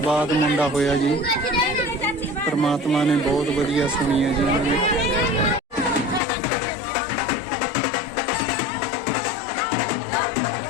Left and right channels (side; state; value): right; drops out; at 6.2 s